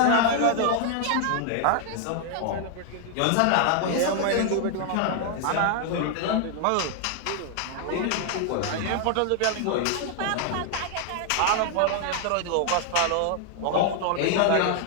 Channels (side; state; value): both; different; correlation 0.00